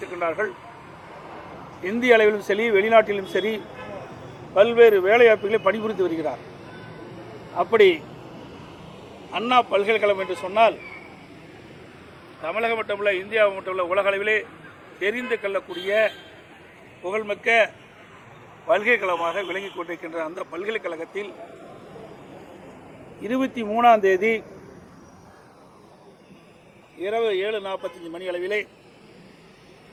இந்திய அளவிலும் சரி, வெளிநாட்டிலும் சரி, பல்வேறு வேலைவாய்ப்புகளை பணிபுரிந்து வருகிறார். அப்படி அண்ணா பல்கலைக்கழகம் என்று சொன்னால் தமிழகம் மட்டுமல்ல, இந்தியா மட்டுமல்ல, உலக அளவிலே தெரிந்து கொள்ளக்கூடிய புகழ்மிக்க பல்கலைக்கழகமாக விளங்கிக் கொண்டிருக்கின்ற அந்த பல்கலைக்கழகத்தில் 23ஆம் தேதி இரவு 7:45 மணி அளவிலே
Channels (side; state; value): both; identical; correlation 1.00